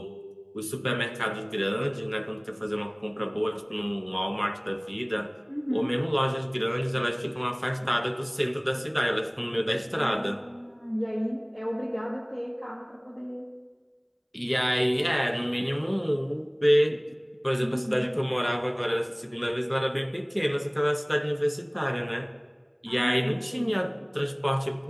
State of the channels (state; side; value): identical; both; correlation 1.00